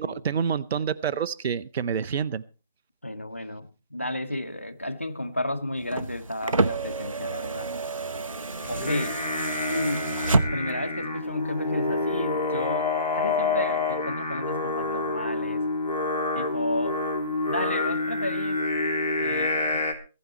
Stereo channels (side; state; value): both; inverted; correlation -0.52